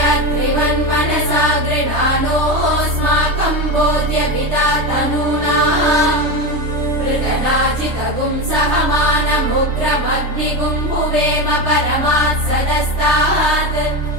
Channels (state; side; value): late; left; 3.2 ms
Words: अत्रिवन्मनसा गृणानोऽस्माकं बोध्यविता तनूनाम् पृतनाजितगुं सहमानमुग्रमग्निगुं भुवेम परमात् सदस्तात्